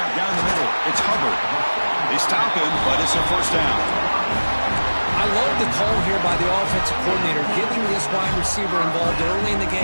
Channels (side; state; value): both; inverted; correlation -1.00